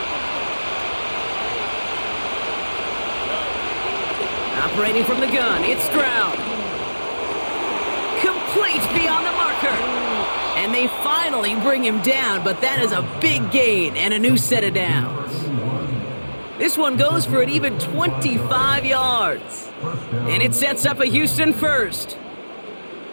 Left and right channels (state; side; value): inverted; both; correlation -1.00